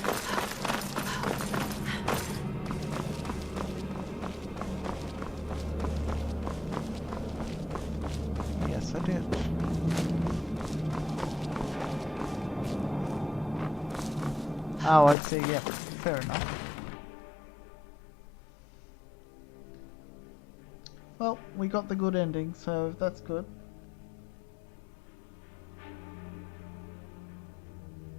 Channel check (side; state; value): right; drops out; at 15.2 s